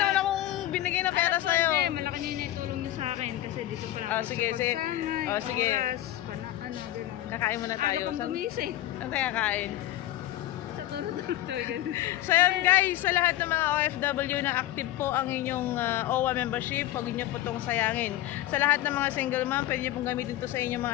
akong binigay na pera sa'yo. Hindi, malaki niya yung naitulong niyo sa akin kasi dito pa lang. Sige. Sige. Oras, gano'n. Kakain muna tayo. Ano pang gumising? Saan tayo kakain? Sa turo-turo. So yun guys, sa lahat ng mga OFW na active po ang inyong OWA membership, huwag niyo po itong sayangin. Sa lahat ng mga single mom, pwede niyo pong gamitin ito sa inyong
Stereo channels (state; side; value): quieter; right; 14.6 dB